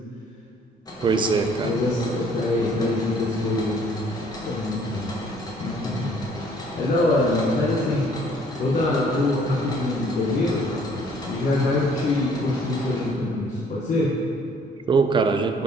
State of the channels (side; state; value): both; normal; correlation 0.60